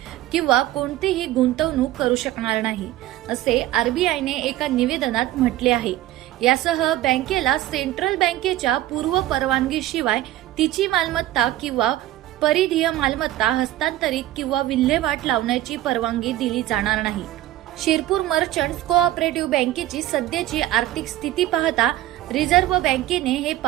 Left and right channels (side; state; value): left; quieter; 14.6 dB